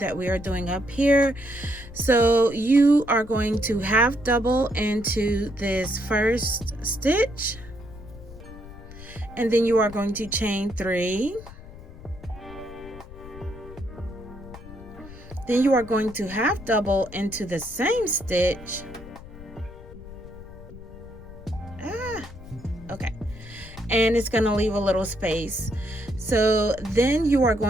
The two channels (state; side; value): noise; left; rumble, 16 dB below the sound